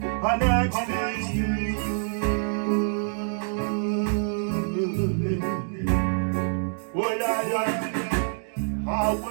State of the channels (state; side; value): silent; left; digital silence